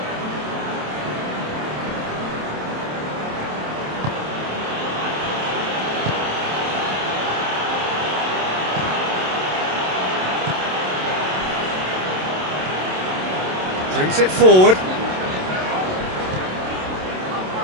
Brings it forward.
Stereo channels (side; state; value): left; late; 27 ms